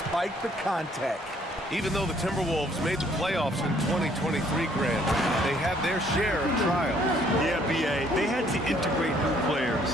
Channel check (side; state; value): both; normal; correlation 0.63